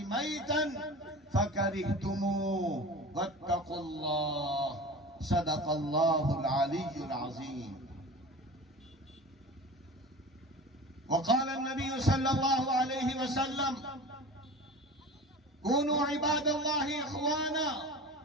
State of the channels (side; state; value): both; normal; correlation 0.35